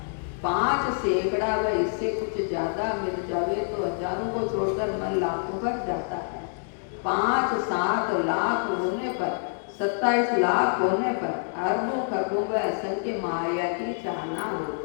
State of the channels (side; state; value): right; silent; 60 dB below the other